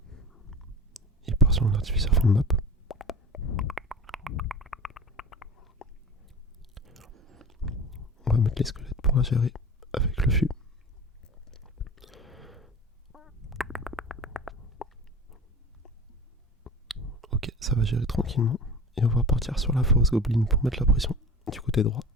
Il part sur un artificier fond de map. On va mettre les squelettes pour la gérer avec le fût. Ok, ça va gérer tranquillement. Et on va partir sur la force goblin pour mettre la pression du côté droit.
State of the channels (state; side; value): normal; both; correlation 0.36